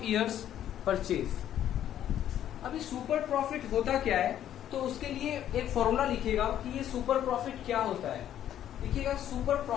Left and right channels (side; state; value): right; quieter; 11.0 dB